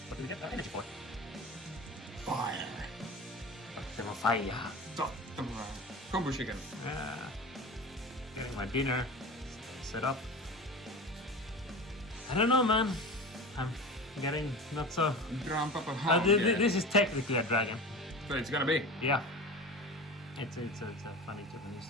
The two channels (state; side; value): normal; both; correlation 0.32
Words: do we get that energy for? Fire! Fire. Combo chicken. Getting my dinner set up. I don't know, man. I'm getting not so. Grandpapa This is technically a dragon. So it's gonna be. Yeah. It's a funny Japanese